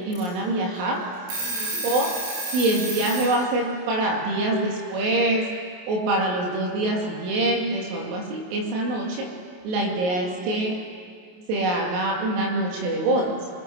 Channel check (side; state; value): left; late; 28 ms